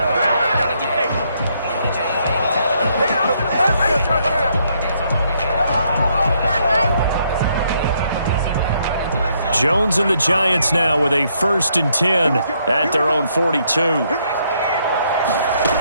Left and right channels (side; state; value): both; inverted; correlation -0.72